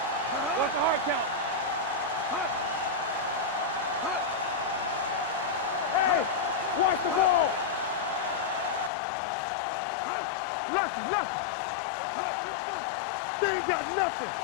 What's the hard count? Hey, watch the ball. Nothing. Let's go, be good. They ain't got nothing.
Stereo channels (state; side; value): drops out; right; at 8.9 s